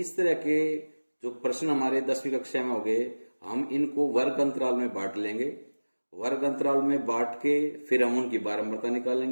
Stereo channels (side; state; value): both; inverted; correlation -1.00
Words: तरह के जो प्रश्न हमारे 10वीं कक्षा में हो गए, हम इनको वर्ग अंतराल में बांट लेंगे। वर्ग अंतराल में बांट के फिर हम उनकी बारंबारता